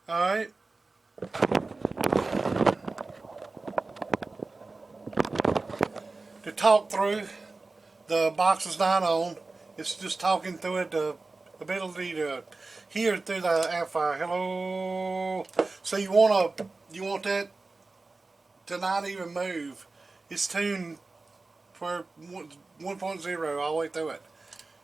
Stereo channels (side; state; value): left; quieter; 3.5 dB